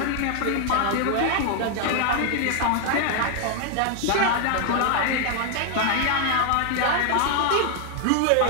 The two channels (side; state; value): both; different; correlation 0.00